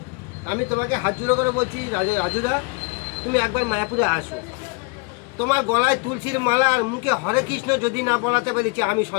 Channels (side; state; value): right; quieter; 30.2 dB